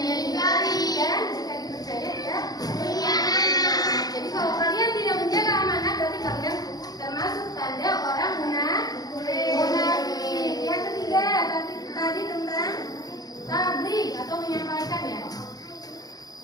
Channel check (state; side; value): late; right; 0.19 ms